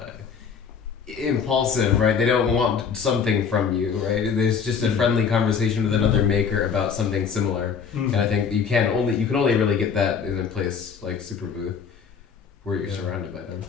impulsive, right? They don't want something from you, right? There's just a friendly conversation with another maker about something similar, and I think you can only really get that in a place like Superbooth, where you're surrounded by them.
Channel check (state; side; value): quieter; right; 6.6 dB